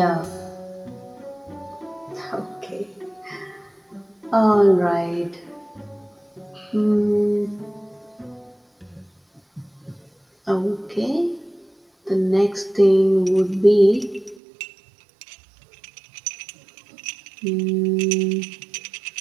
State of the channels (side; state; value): left; drops out; at 14.4 s